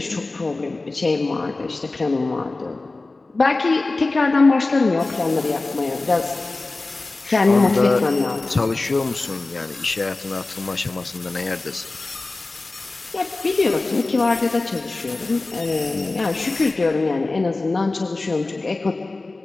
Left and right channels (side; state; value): right; quieter; 3.3 dB